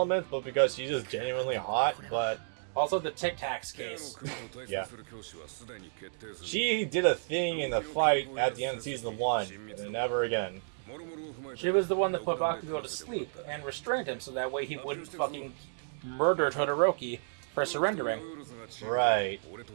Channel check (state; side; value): silent; left; digital silence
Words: but because she's just genuinely hot, but... Also the Tic Tacs case. Yeah. She did a thing in the fight at the end of Season 1, and then never again. She was the one that put Bakugo to sleep and restrained him so that way he wouldn't fucking murder Todoroki for surrendering. Right.